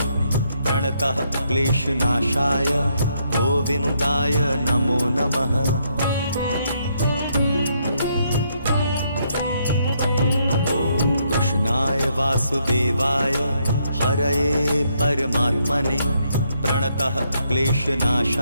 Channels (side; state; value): both; inverted; correlation -0.74